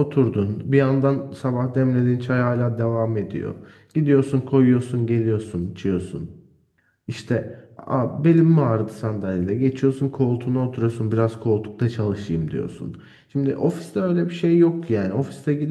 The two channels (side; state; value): both; identical; correlation 1.00